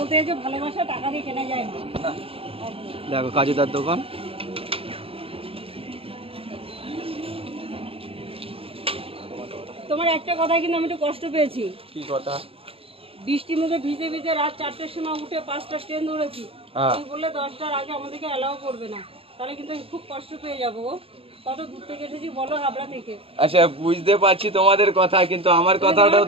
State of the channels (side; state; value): left; late; 0.27 ms